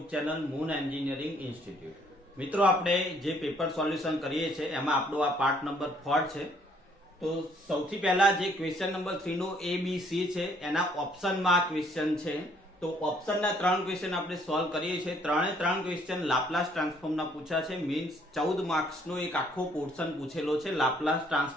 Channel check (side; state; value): both; normal; correlation 0.64